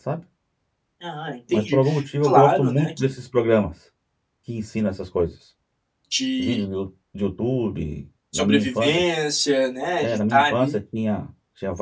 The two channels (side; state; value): both; identical; correlation 1.00